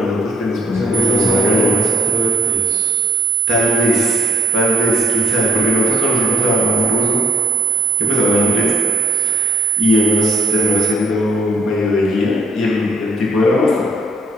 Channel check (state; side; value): normal; both; correlation 0.59